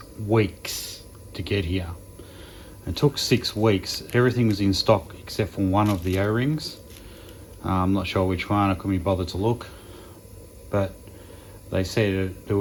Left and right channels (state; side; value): identical; both; correlation 1.00